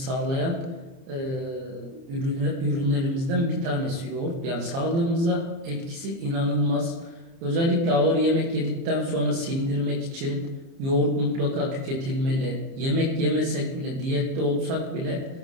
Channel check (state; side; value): late; left; 30 ms